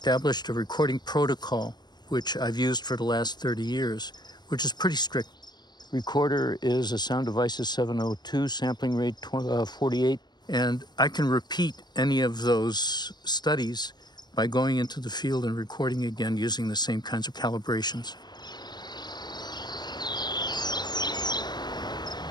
a recording protocol, which I've used for the last 30 years, which is pretty strict. Recorder is a Sound Devices 702, sampling rate 48, and I can repeat any of those studies by going into the field and recording again using the same kinds of calibrations.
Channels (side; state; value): right; late; 0.21 ms